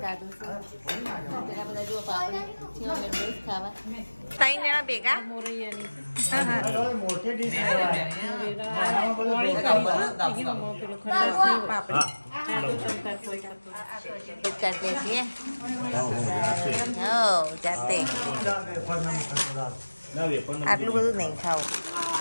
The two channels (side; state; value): both; inverted; correlation -1.00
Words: ત્રણ જણા ભેગા કાઢીએ છીએ જાતે. આટલું બધું નહીં ખાવું.